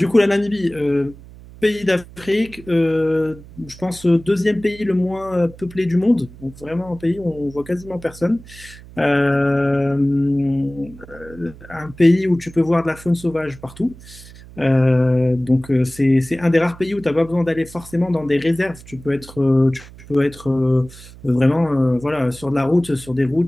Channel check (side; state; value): right; noise; hum, 19 dB below the sound